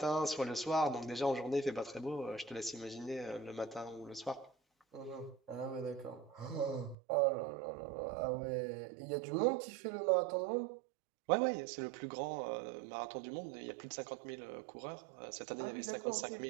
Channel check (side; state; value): left; drops out; at 7.0 s